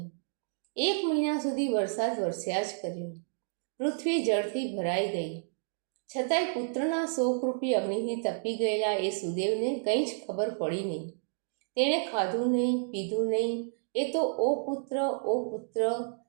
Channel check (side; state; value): left; silent; digital silence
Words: 1 મહિના સુધી વરસાદ વરસ્યા જ કર્યો. પૃથ્વી જળથી ભરાઈ ગઈ. છતાંય પુત્રના શોકરૂપી અગ્નિથી તપી ગયેલા એ સુદેવને કંઈ જ ખબર પડી નહીં. તેણે ખાધું નહીં, પીધું નહીં. એ તો ઓ પુત્ર, ઓ પુત્ર